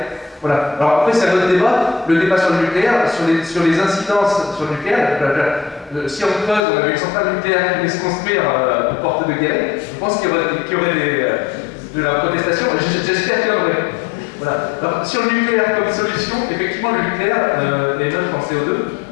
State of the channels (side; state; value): right; drops out; at 6.6 s